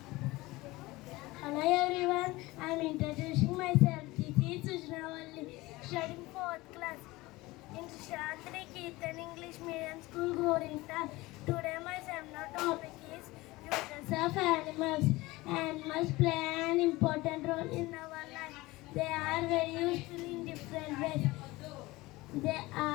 hello everyone. I am introducing myself. This is Sujanaa, studying 4th class in Shantri Keertan English Medium School, Gorinta. Today my seminar topic is uses of animals. Animals play an important role in our life. They are very useful in different ways. They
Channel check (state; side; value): quieter; right; 20.5 dB